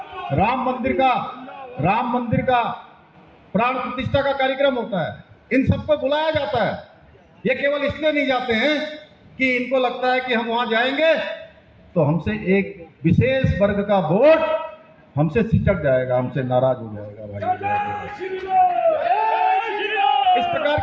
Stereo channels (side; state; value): both; identical; correlation 1.00